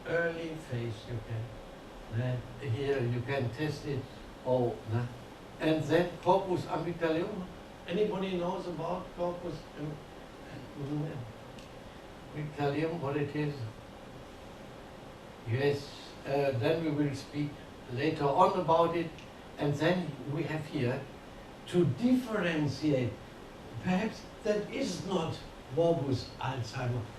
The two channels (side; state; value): both; identical; correlation 1.00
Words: early phase. You can here you can test it. And then corpus amygdaleum. Anybody knows about corpus amygdaleum? What it is? Yes. Then we will speak later on about it. And then we have here to differentiate. Perhaps that is not morbus Alzheimer,